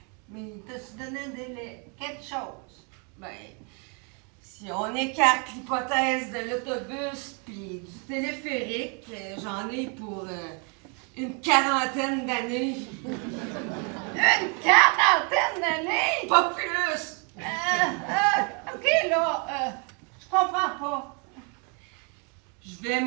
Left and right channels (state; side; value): quieter; left; 36.1 dB